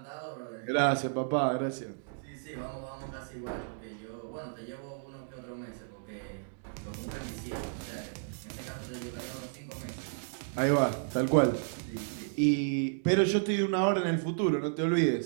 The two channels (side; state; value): left; silent; digital silence